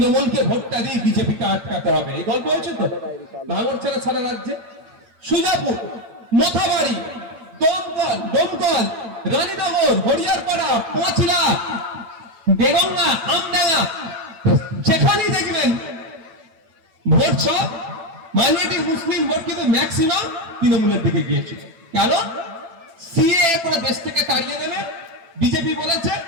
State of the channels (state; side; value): late; left; 8.9 ms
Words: ভোটটা দিয়ে বিজেপিকে আটকাতে হবে। এই গল্প হয়েছে তো ভাঙড় ছেড়ে সারা রাজ্যে। সুজাপুর, মোথাবাড়ি, দমকল, রানীনগর, হরিয়ারপাড়া, পাঁচলা, বেগঙ্গা, আমডাঙ্গা, যেখানেই দেখবেন ভোট সব মাইনরিটি মুসলিম ভোট কিন্তু ম্যাক্সিমাম তৃণমূলের দিকে গিয়েছিল। কেন? সিএ করে দেশ থেকে তাড়িয়ে দেবে বিজেপি বলেছে,